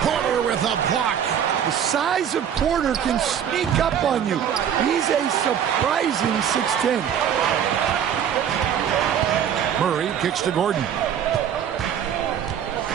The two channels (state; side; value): quieter; left; 8.9 dB